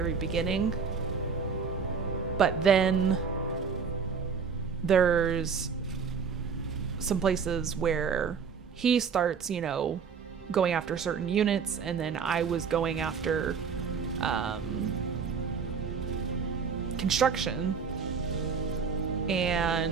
beginning. But then there's some places where he starts, going after certain units, and then I was going after construction. And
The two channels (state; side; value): quieter; left; 6.1 dB